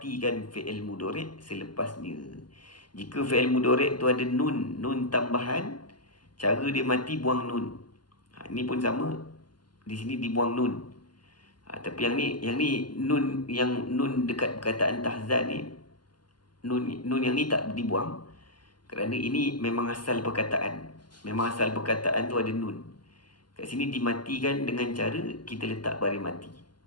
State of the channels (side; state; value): right; late; 0.71 ms